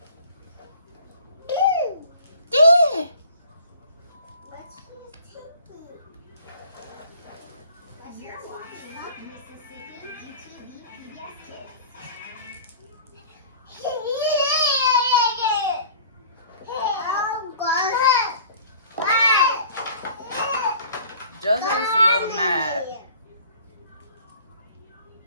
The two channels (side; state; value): both; inverted; correlation -0.47